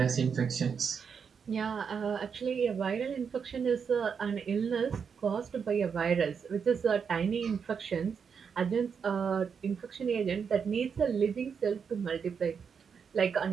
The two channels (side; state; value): left; quieter; 6.5 dB